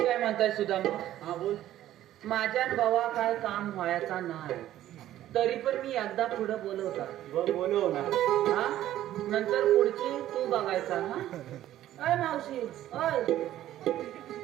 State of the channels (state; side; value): quieter; left; 13.1 dB